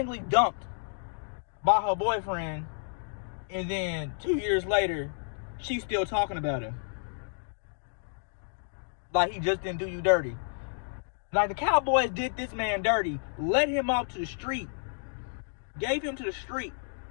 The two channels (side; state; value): right; silent; digital silence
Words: dumped by her boyfriend, and then 2 years later she's still talking about him like he just didn't do you dirty. Like, the Cowboys did this man dirty, led him out to the street, gave him to the street.